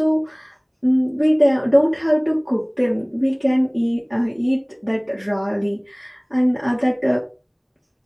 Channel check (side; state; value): both; identical; correlation 1.00